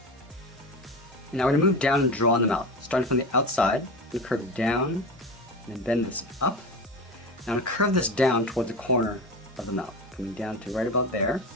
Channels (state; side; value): normal; both; correlation 0.27